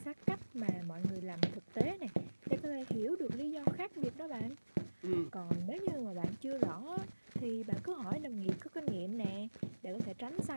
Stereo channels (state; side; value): inverted; both; correlation -1.00